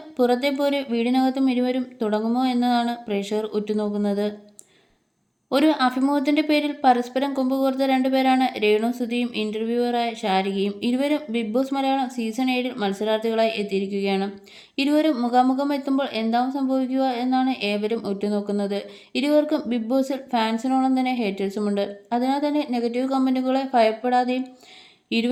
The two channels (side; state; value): both; identical; correlation 1.00